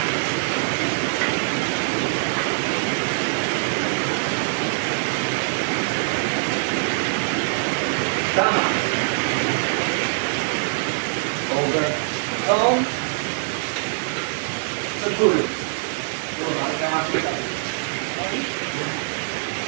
Sama. Over. Tone. Seguro. Tuh, harus lewat kita.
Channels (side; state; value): left; silent; digital silence